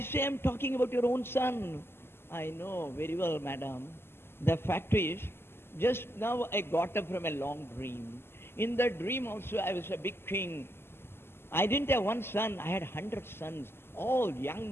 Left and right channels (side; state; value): right; late; 0.12 ms